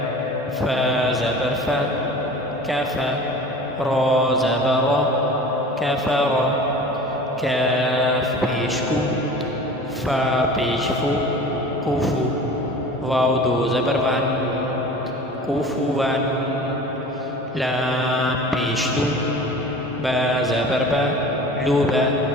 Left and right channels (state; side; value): normal; both; correlation 0.40